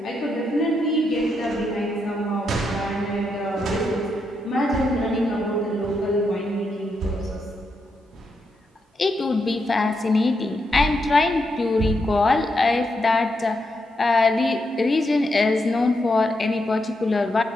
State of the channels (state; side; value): normal; both; correlation 0.82